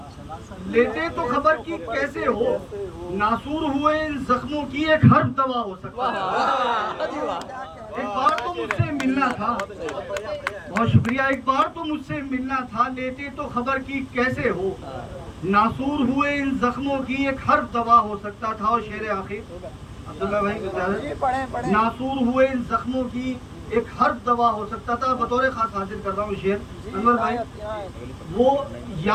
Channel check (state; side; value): identical; both; correlation 1.00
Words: लेते तो खबर की कैसे हो। नासूर हुए इन जख्मों की एक हर्फ दवा हो सकता था। एक बार तो मुझसे मिलना था। बहुत शुक्रिया। एक बार तो मुझसे मिलना था, लेते तो खबर की कैसे हो। नासूर हुए इन जख्मों की एक हर्फ दवा हो सकता था। और शेर आखिर अब्दुल्ला भाई, नासूर हुए इन जख्मों की एक हर्फ दवा हो सकता था। बतौर खास हाजिर कर रहा हूँ शेर अनवर भाई। वो